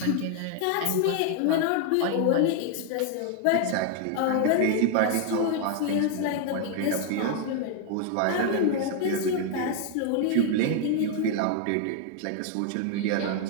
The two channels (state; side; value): different; both; correlation 0.00